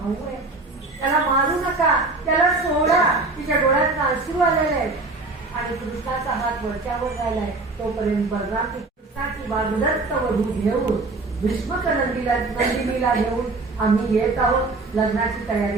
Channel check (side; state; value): left; quieter; 3.4 dB